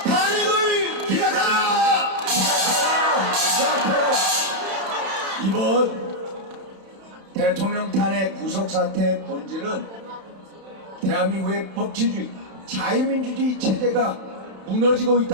탄핵을 기각하라! 이번 대통령 탄핵 구속사태의 본질은 대한민국의 법치주의, 자유민주주의 체제가 무너지고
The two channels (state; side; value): late; left; 31 ms